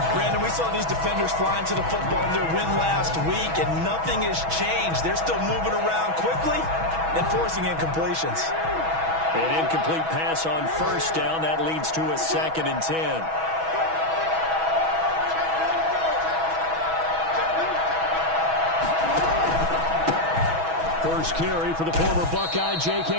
Brandon, we saw these defenders flying to the football in their win last week, and nothing has changed. They're still moving around quickly and forcing incompletions. An incomplete pass on 1st down. That leads to a 2nd and 10. First carry for the former Buckeye,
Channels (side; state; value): left; late; 6.2 ms